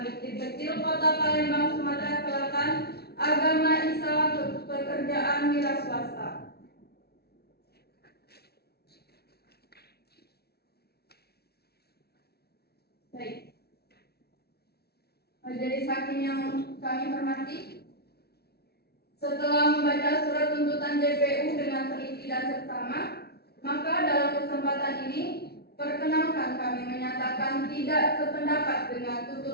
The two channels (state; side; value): late; right; 0.46 ms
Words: Bukit Kecil, Kota Palembang, Sumatera Selatan. Agama Islam, pekerjaan wira swasta. Baik. Majelis Hakim yang kami hormati, setelah membaca surat tuntutan JPU dengan teliti dan seksama, maka dalam kesempatan ini perkenankan kami menyatakan tidak sependapat dengan